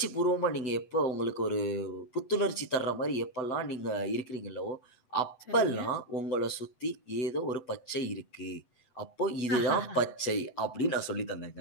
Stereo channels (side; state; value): right; late; 7.8 ms